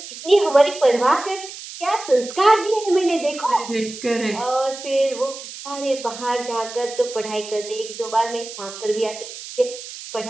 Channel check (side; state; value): right; noise; hiss, 12 dB below the sound